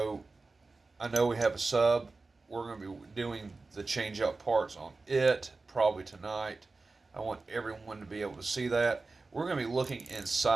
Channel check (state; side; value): quieter; left; 3.7 dB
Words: I know we have a sub. We're going to be doing the change out parts on it probably tonight. I want everyone to be able to see that. We're going to be looking